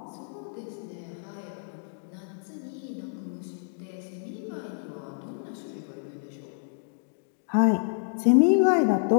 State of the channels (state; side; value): silent; right; digital silence